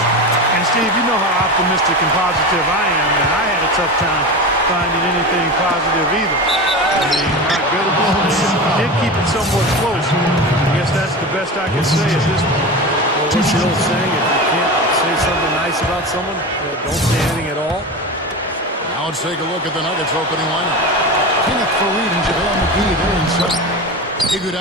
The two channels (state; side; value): normal; both; correlation 0.26